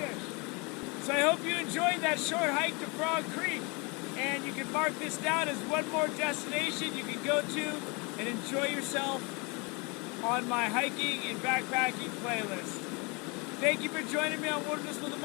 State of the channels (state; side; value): quieter; right; 29.6 dB